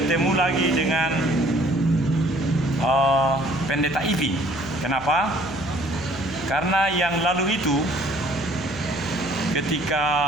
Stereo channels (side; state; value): left; noise; hum, 16 dB below the sound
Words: lagi dengan Pendeta Ivi. Kenapa? Karena yang lalu itu ketika